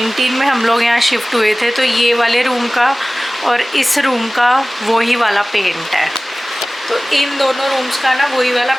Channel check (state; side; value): normal; both; correlation 0.98